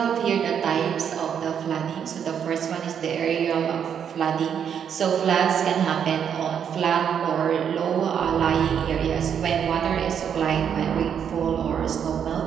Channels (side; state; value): left; quieter; 8.1 dB